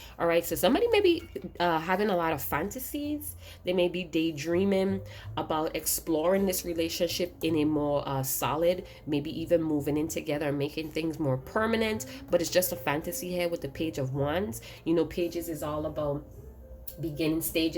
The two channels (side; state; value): both; identical; correlation 1.00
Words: All right, so somebody may be having a lot of fantasies. They may be daydreaming about exploring this relationship in a more solid, maybe even moving in together and making things more permanent. But it's just a fantasy here with the Page of Wands. You know, pages is all about beginning